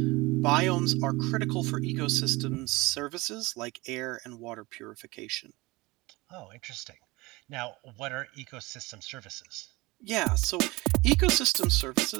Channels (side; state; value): left; quieter; 22.2 dB